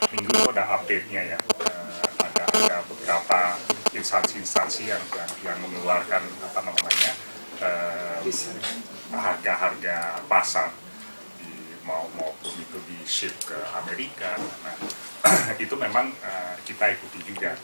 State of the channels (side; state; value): both; inverted; correlation -1.00